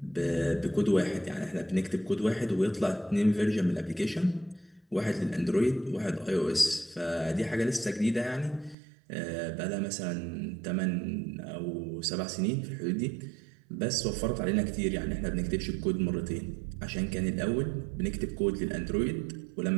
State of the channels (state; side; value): drops out; left; at 8.8 s